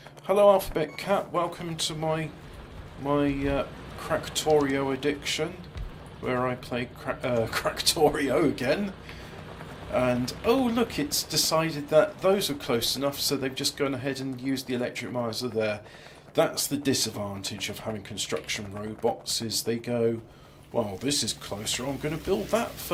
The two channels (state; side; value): identical; both; correlation 1.00